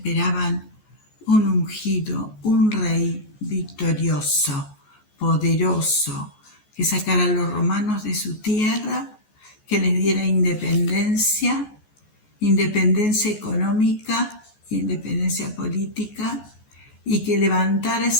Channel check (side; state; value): right; late; 14 ms